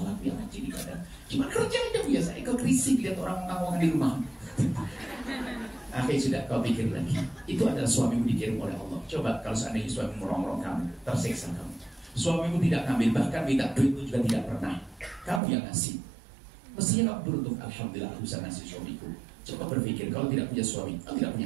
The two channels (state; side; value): drops out; left; at 15.4 s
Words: dia rajin ibadah. Cuma kerja aja biasa, ikut risik lihat orang ngomong di rumah. Akhirnya sudah kau pikir lagi. Itu adalah suamimu dikirim oleh Allah. Coba kalau seandainya suamimu merongrong kamu, tersiksa kamu. Suamimu tidak ngambil, bahkan minta duit itu juga tidak pernah. Kamu yang ngasih. Mestinya kamu beruntung, alhamdulillah aku bisa ngasih suamiku. Coba berpikir, kalau tidak punya suami, kalau tidak